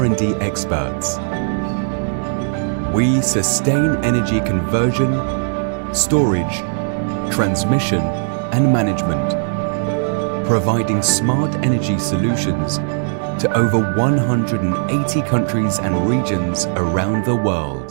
experts. We sustain energy conversion, storage, transmission, and management, providing smart energy solutions to over 180 countries and regions around the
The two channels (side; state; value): left; silent; digital silence